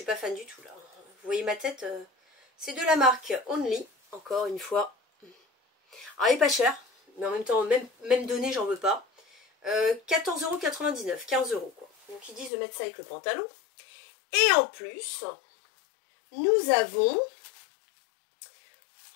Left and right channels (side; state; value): right; drops out; at 12.5 s